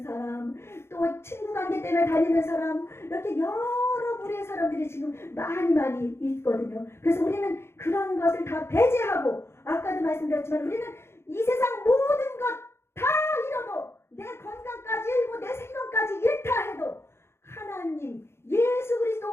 사람 또 친구 관계 때문에 다니는 사람 이렇게 여러 부류의 사람들이 지금 많이 있거든요. 그래서 우리는 그런 것을 다 배제하고 아까도 말씀드렸지만 우리는 이 세상 모든 것 다 잃어도 내 건강까지 잃고 내 생명까지 잃다 해도 하나님 예수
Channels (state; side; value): late; right; 0.12 ms